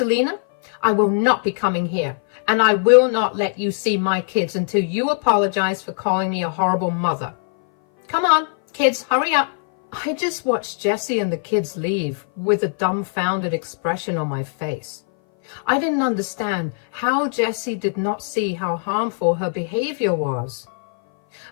I will not be coming here. And I will not let you see my kids until you apologize for calling me a horrible mother. Come on, kids, hurry up. I just watched Jessie and the kids leave with a dumbfounded expression on my face. I didn't understand how Jessie did not see how harmful her behavior was.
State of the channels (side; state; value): right; silent; 58 dB below the other